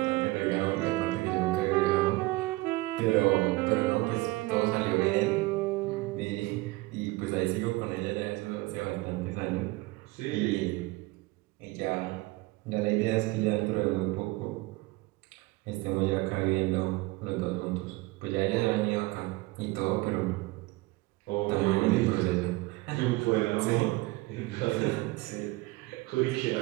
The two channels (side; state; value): left; quieter; 21.4 dB